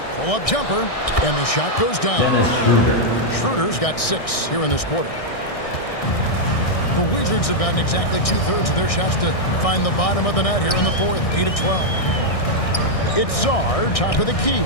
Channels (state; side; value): late; right; 1.6 ms